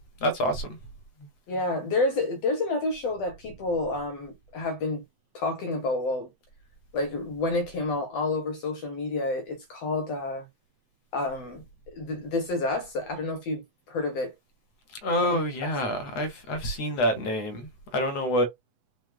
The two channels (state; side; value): late; right; 7.9 ms